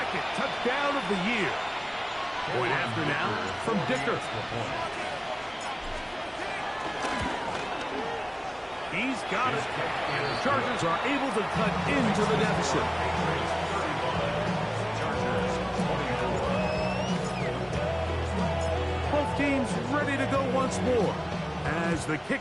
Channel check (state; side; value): identical; both; correlation 1.00